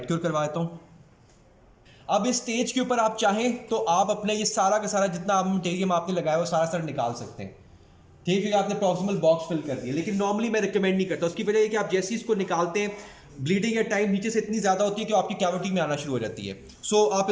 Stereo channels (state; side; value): identical; both; correlation 1.00